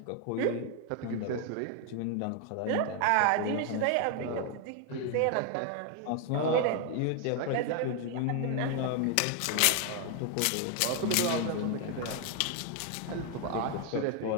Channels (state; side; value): different; both; correlation 0.00